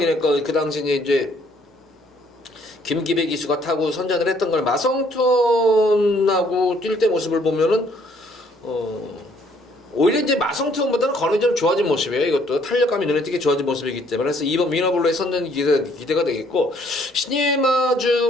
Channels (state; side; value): normal; both; correlation 0.64